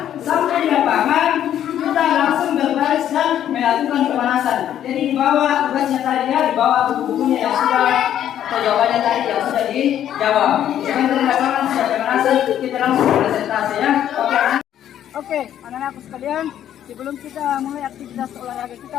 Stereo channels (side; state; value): right; quieter; 10.7 dB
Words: Sampai di lapangan, kita langsung berbaris dan melakukan pemanasan. Jadi di bawah tugasnya tadi ya, di bawah buku-bukunya yang sudah atau jawabannya tadi yang sudah dijawab. Jangan di lapangan sudah pemanasan, kita langsung presentasi ya. Oke, anak-anakku sekalian, sebelum kita mulai aktivitas olahraga